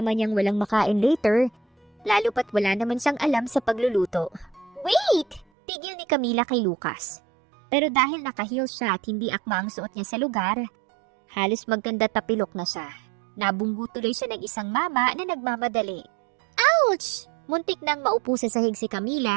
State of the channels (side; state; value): left; drops out; at 5.5 s